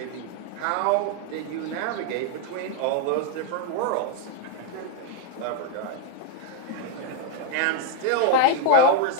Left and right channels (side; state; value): both; different; correlation 0.00